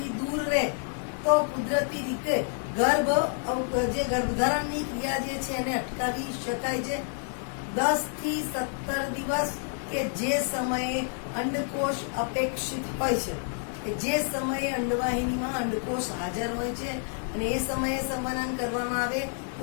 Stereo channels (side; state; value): right; silent; 56 dB below the other